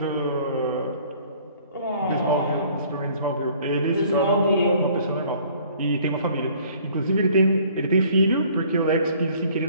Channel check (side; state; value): both; inverted; correlation -0.56